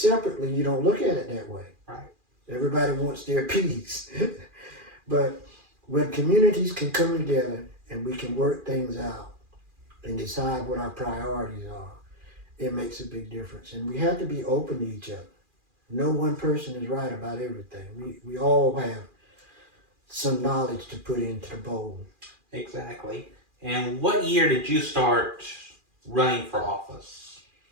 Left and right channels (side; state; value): left; late; 2.4 ms